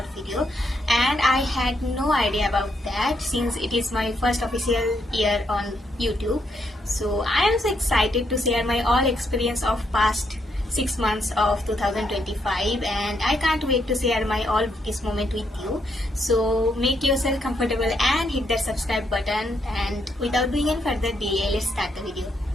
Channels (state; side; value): normal; both; correlation 0.77